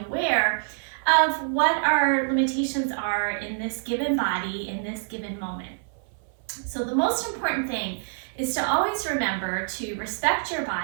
aware of what our limitations are in this given body, in this given moment. So the most important thing is to always remember to respect your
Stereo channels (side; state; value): left; silent; 59 dB below the other